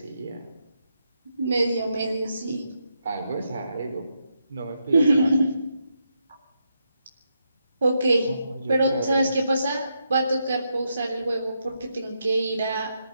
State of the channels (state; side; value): inverted; both; correlation -0.82